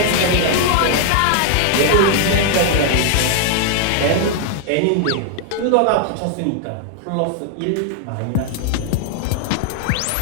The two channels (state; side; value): different; both; correlation 0.00